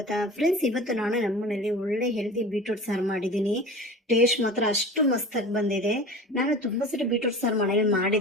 ಫ್ರೆಂಡ್ಸ್, ಇವತ್ತು ನಾನು ನಮ್ಮನೇಲಿ ಒಳ್ಳೆ ಹೆಲ್ದಿ ಬೀಟ್ರೂಟ್ ಸಾರು ಮಾಡಿದ್ದೀನಿ. ಟೇಸ್ಟ್ ಮಾತ್ರ ಅಷ್ಟು ಮಸ್ತಾಗಿ ಬಂದಿದೆ. ನಾನು ತುಂಬ ಸರಿ ಬೀಟ್ರೂಟ್ ಸಾರು ಮನೇಲಿ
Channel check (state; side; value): normal; both; correlation 0.36